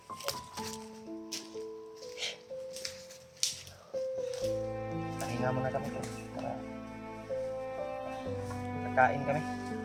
Pahinga muna kami to para kakain kami.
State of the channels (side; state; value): both; identical; correlation 1.00